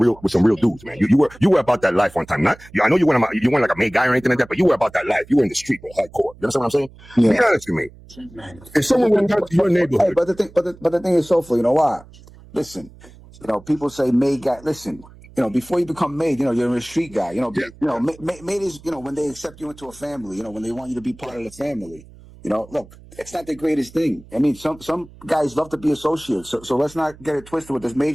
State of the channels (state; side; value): noise; right; hum, 22 dB below the sound